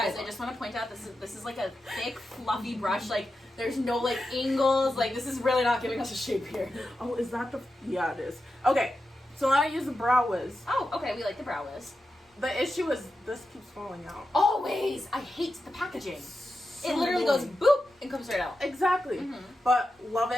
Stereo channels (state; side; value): normal; both; correlation 0.90